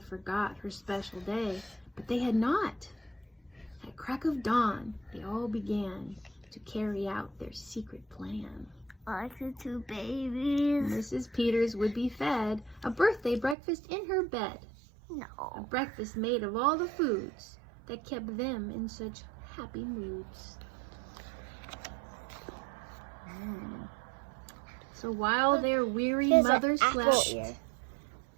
forgot her special day, but they had not. At crack of dawn, they all began to carry out their secret plan. Like the 2 babies. Mrs. Peters would be fed a birthday breakfast in her bed. A No. breakfast made of all the foods that kept them in such happy moods. So while their weary Here's an mother apple slept, ear.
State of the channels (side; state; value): left; drops out; at 13.6 s